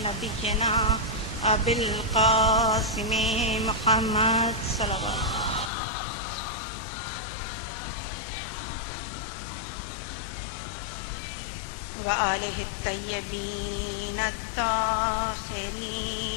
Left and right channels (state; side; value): drops out; right; at 5.7 s